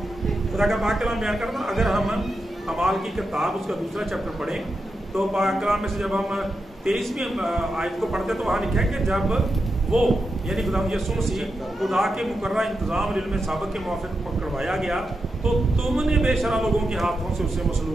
खुदा का पाक कलाम बयान करता, अगर हम अमाल की किताब उसका दूसरा चैप्टर पढ़ें तो पाक कलाम में से जब हम 23वीं आयत को पढ़ते तो वहाँ लिखा है कि जब वो यानी खुदा यीशु मसीह खुदा के मुकर्रर इंतज़ाम इल्म साबिक़ के मुआफ़िक़ पकड़वाया गया तो तुमने बेशरा लोगों के हाथों से उसे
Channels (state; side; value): normal; both; correlation 0.87